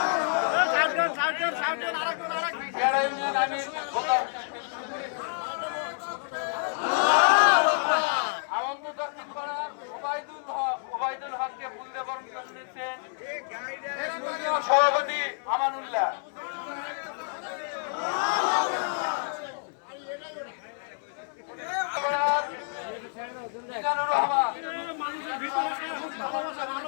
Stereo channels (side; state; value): right; silent; 59 dB below the other